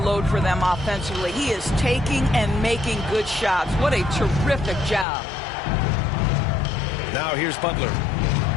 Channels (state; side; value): drops out; right; at 5.1 s